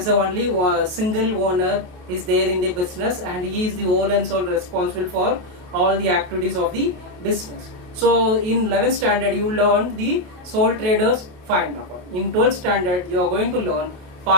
only a single owner is there in the business and he is the whole and sole responsible for all the activities of the business. So in 11th standard you learn the sole traders final account. In 12th standard you are going to learn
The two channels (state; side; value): late; left; 28 ms